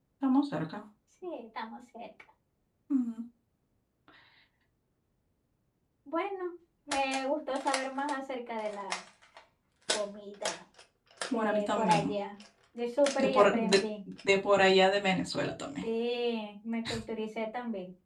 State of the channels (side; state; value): both; identical; correlation 1.00